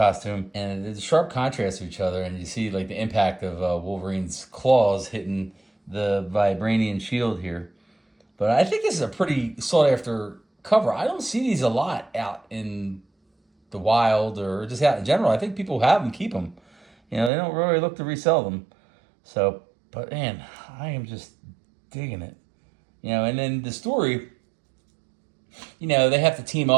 And there's a sharp contrast to each other, and you see like the impact of Wolverine's claws hitting the vibranium shield here. But I think this is a pretty sought-after cover. I don't see these a lot out in the wild or just out in general. I think people have them, keep them. They don't really look to resell them. So, but man, I am just digging it. And then the story, they have to team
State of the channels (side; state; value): left; drops out; at 17.3 s